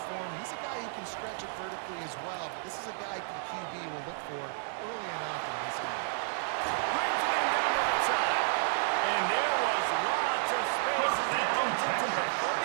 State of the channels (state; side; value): silent; left; digital silence